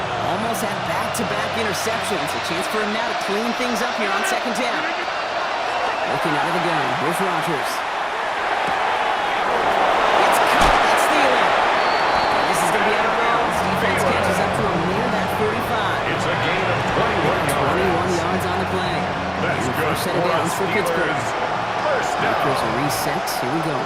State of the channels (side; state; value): both; identical; correlation 1.00